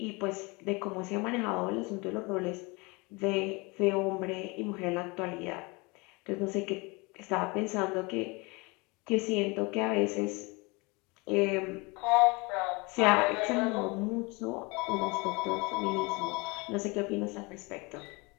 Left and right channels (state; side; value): quieter; right; 27.0 dB